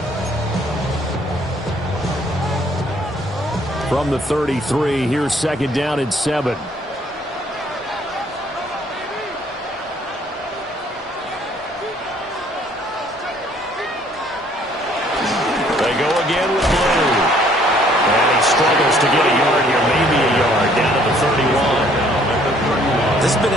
From the 33, here's 2nd down and 7. They go again with Blue. And he struggles to get a yard here, maybe a yard, down to the 31. This has been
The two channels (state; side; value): normal; both; correlation 0.61